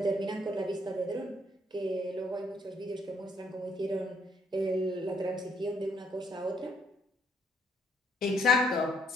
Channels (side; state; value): both; normal; correlation 0.69